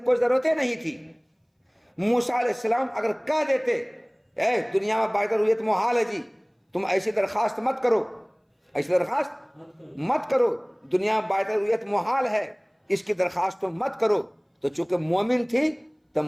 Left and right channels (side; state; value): both; identical; correlation 1.00